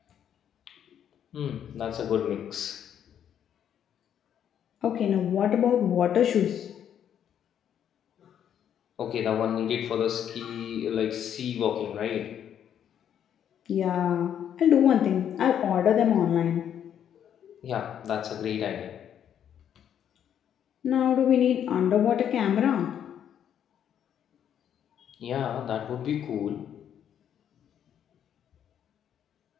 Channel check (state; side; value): quieter; right; 9.4 dB